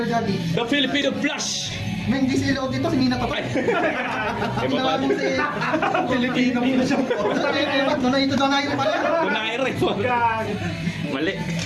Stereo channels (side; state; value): both; identical; correlation 1.00